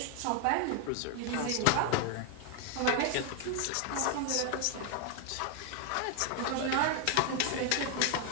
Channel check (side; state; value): both; different; correlation 0.00